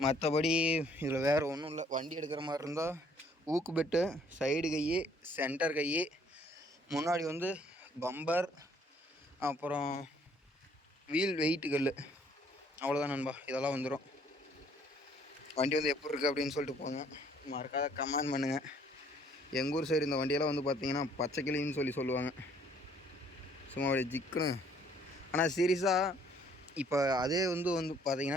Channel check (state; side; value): normal; both; correlation 0.62